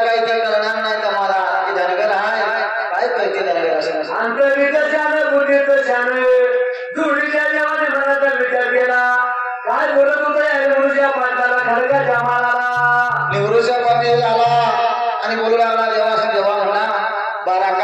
काही ते करणार नाही का मला की धनगर आहे काय करते धनगर असं. अंतरीचं शान बुद्धीचं शान जुडीच्या देवाने मनाचा विचार केला. काय बोलत होतं या लिंगरूच्या पाटाला खडकाच्या माळाला. निवृत्तीच्या पाटील आला आणि बोलू लागला देवास देवा म्हणा 12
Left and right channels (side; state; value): both; identical; correlation 1.00